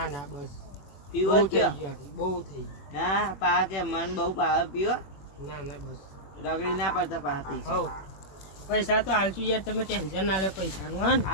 ના બસ પીવો બહુ જ થઈ કયો ગયું આટલું, બહુ થઈ ગયું. ના પા કે મન બહુ પાવે પીવો ના ના બસ રગડી ના પડતા પા પી હવ પૈસા તો હાલશું યાર તમે ટેન્શન ના લે પૈસાનું હા ને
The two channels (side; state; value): right; late; 21 ms